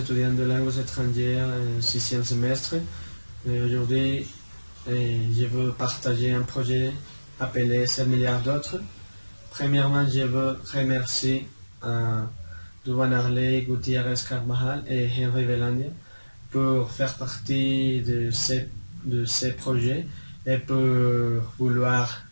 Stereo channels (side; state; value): both; inverted; correlation -1.00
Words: de langues étrangères en 6e semestre. Aujourd'hui, je veux partager un projet appelé 7 milliards d'autres. Premièrement, je veux remercier Duvan Harley, Gutiérrez Carvajal et Henry Velandia pour faire partie de ces projets et pour vouloir